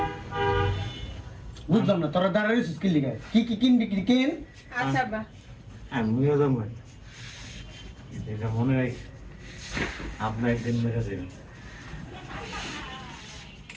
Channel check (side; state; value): both; identical; correlation 1.00